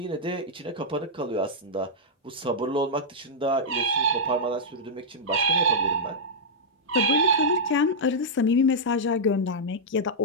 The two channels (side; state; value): both; normal; correlation -0.08